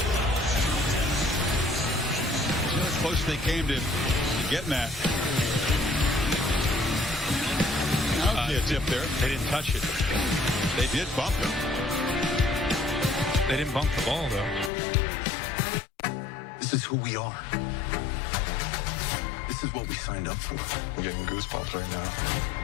See how close they came to getting that. A tip there. They didn't touch it. They did bump him. They didn't bump the ball, though. This is who we are. This is what we signed up for. I'm getting goosebumps right now.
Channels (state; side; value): drops out; right; at 14.7 s